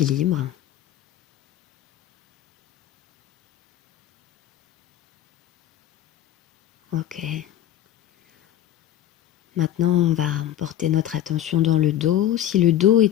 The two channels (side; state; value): right; quieter; 11.9 dB